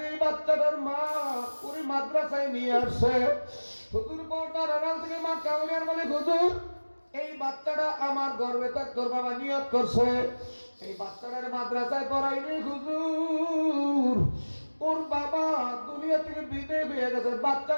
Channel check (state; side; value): inverted; both; correlation -1.00